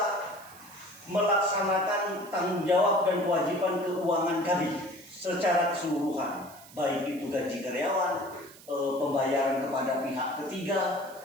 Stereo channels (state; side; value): noise; right; hiss, 21 dB below the sound